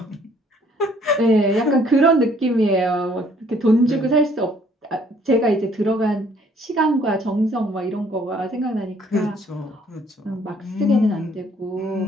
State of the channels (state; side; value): normal; both; correlation 0.62